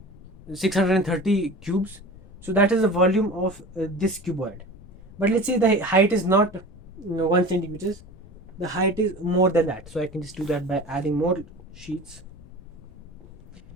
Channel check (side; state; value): left; noise; rumble, 21 dB below the sound